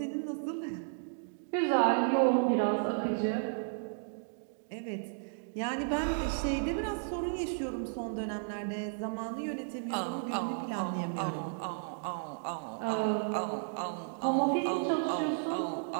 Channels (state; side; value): silent; left; digital silence